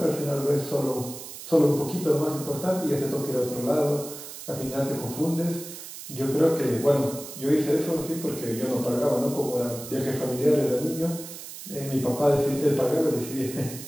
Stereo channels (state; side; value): noise; right; hiss, 12 dB below the sound